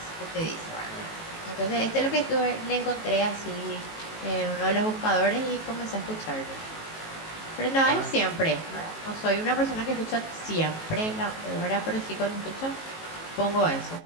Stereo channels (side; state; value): right; late; 18 ms